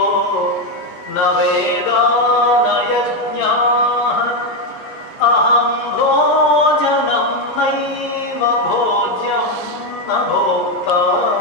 न वेदा न यज्ञाः अहं भोजनं नैव भोज्यं न भोक्ता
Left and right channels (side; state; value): both; normal; correlation 0.07